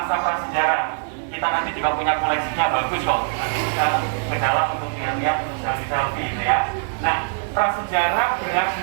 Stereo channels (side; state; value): left; silent; 64 dB below the other